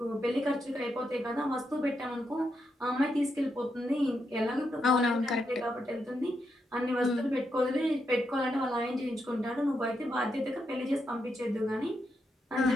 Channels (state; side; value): normal; both; correlation 0.83